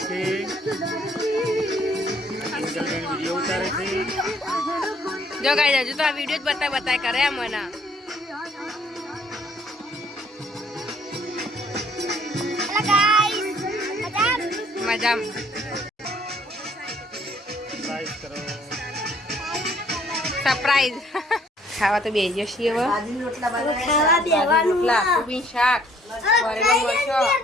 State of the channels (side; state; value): both; normal; correlation 0.61